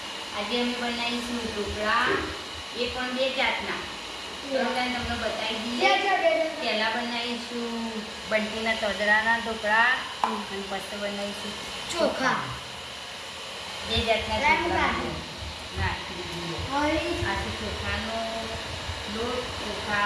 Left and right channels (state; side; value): identical; both; correlation 1.00